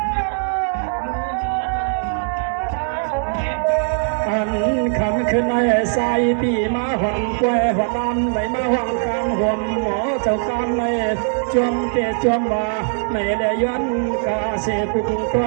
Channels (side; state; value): left; silent; digital silence